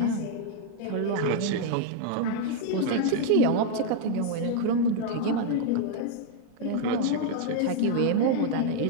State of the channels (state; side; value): different; both; correlation 0.00